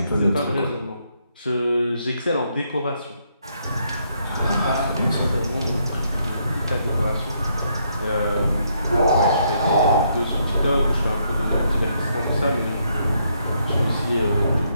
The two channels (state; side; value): inverted; both; correlation -0.74